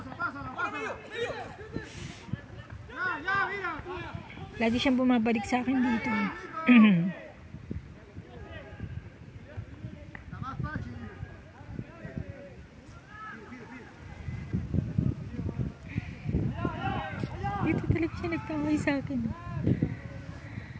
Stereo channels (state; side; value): identical; both; correlation 1.00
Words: Lagi siyang bumabalik sa akin dito. Dito talaga siya nagtaway sa akin.